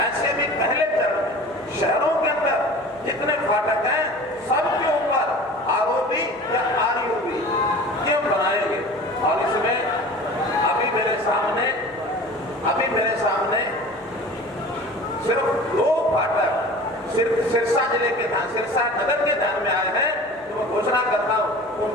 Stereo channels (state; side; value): noise; right; hum, 29 dB below the sound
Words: ऐसे भी पहले चरण शहरों के अंदर जितने फाटक हैं सबके ऊपर आरओबी या आरयूबी ये हम बनाएंगे। और इसमें अभी मेरे सामने सिर्फ 2 फाटक सिर्फ सिरसा जिले के ध्यान, सिरसा नगर के ध्यान में आए हैं। तो मैं घोषणा करता हूँ उन